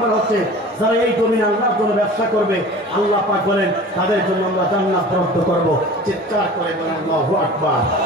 হচ্ছে যারা এই জমিনে আল্লাহর জন্য ব্যবসা করবে, আল্লাহ পাক বলেন তাদের জন্য আমরা জান্নাত বরাদ্দ করব। চিৎকার করে বলেন আল্লাহু আকবার।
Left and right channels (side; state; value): both; normal; correlation 0.40